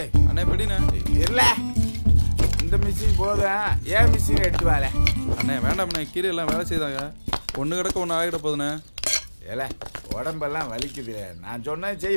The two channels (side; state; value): both; inverted; correlation -1.00